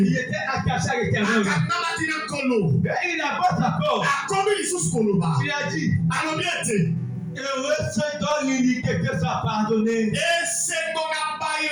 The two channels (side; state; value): both; identical; correlation 1.00